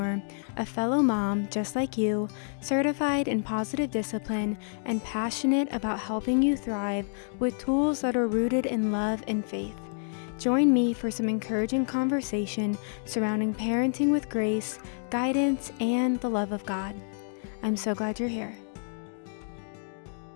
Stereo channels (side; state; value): right; silent; digital silence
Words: a fellow mom just like you, certified in positive discipline and passionate about helping you thrive with tools that are rooted in love and faith. Join me for some encouraging conversation surrounding parenting with grace, guidance, and the love of God. I'm so glad you're here.